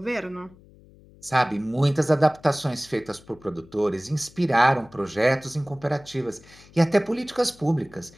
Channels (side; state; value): left; noise; hum, 25 dB below the sound